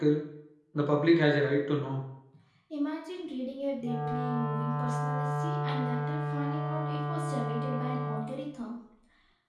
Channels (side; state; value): both; identical; correlation 1.00